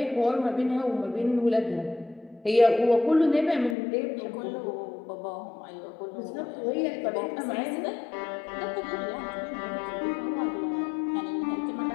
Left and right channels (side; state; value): right; drops out; at 3.8 s